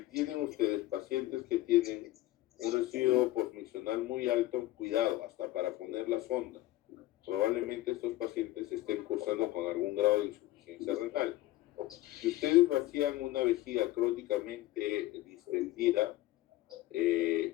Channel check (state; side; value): quieter; right; 16.2 dB